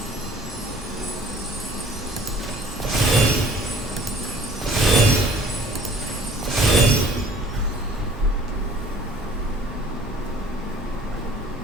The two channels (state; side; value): normal; both; correlation 0.53